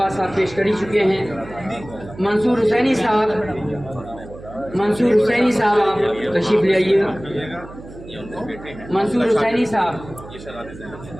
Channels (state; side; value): noise; right; hum, 16 dB below the sound